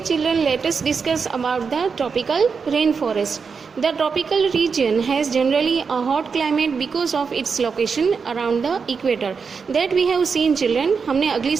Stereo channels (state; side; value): quieter; left; 5.5 dB